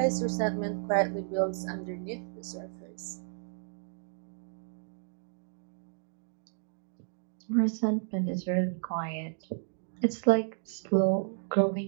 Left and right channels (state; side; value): silent; left; digital silence